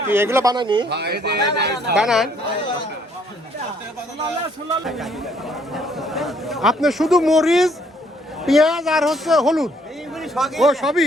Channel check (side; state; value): both; normal; correlation 0.65